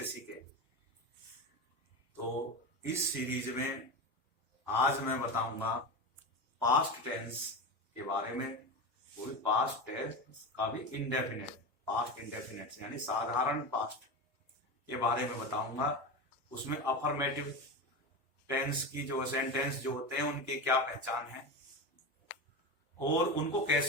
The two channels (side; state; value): both; normal; correlation 0.21